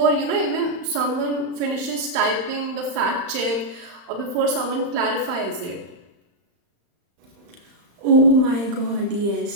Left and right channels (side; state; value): left; late; 35 ms